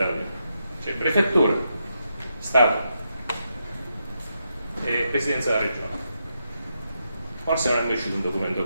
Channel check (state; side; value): inverted; both; correlation -0.83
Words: c'è prefettura, Stato e Presidenza della Regione. Forse non è mai uscito un documento